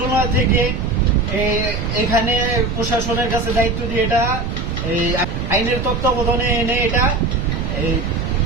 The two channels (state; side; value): noise; right; rumble, 3 dB below the sound